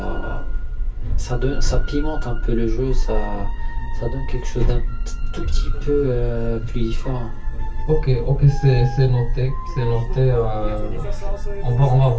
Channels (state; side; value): identical; both; correlation 1.00